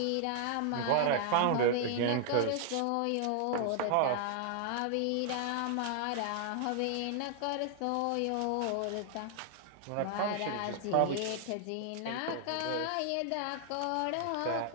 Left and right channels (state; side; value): different; both; correlation 0.00